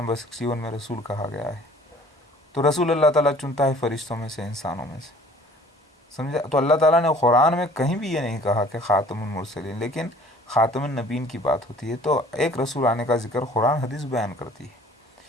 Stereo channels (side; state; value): both; normal; correlation 0.51